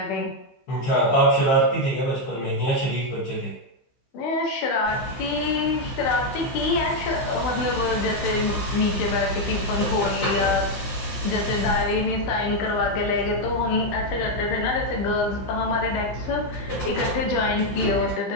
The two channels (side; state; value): right; late; 16 ms